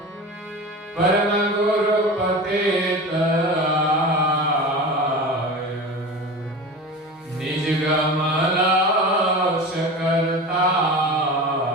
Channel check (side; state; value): both; normal; correlation 0.31